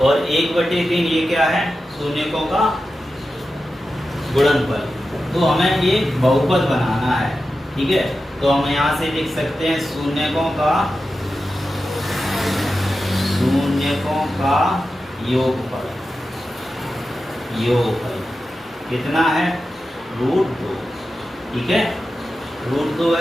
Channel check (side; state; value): both; normal; correlation 0.92